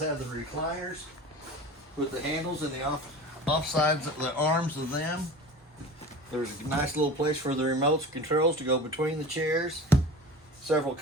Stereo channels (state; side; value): normal; both; correlation 0.36